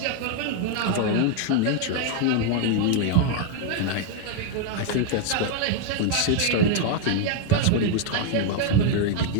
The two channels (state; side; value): different; both; correlation 0.00